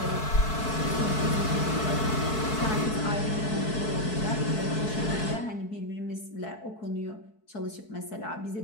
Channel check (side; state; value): right; late; 4.6 ms